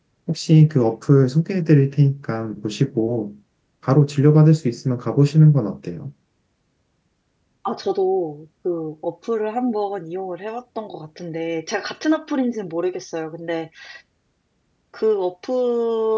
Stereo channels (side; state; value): both; identical; correlation 1.00